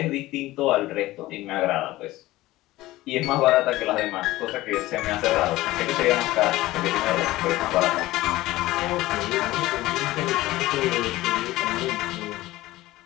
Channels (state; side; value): quieter; right; 17.5 dB